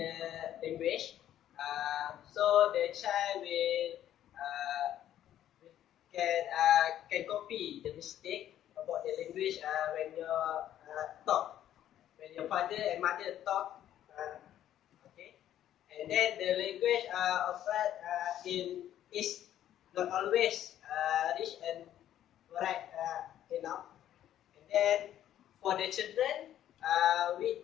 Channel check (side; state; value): right; quieter; 11.6 dB